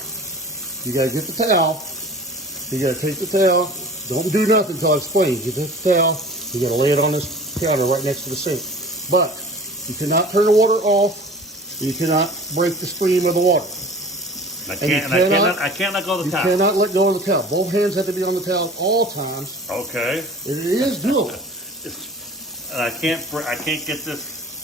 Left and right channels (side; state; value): both; normal; correlation 0.43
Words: you gotta get the towel. You gotta take the towel. Don't do nothing until I explain. You get the towel. You gotta lay it on this counter right next to the sink. But you cannot turn the water off. You cannot break the stream of the water. I can't let go of the towel. You cannot let go of the towel. Both hands have to be on the towel at all times. Okay. It is doable. And I can't get this.